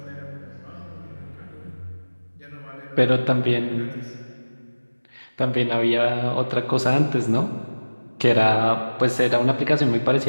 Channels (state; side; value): inverted; both; correlation -1.00